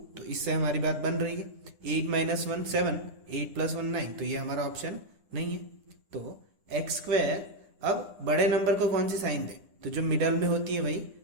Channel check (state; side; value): late; left; 9.9 ms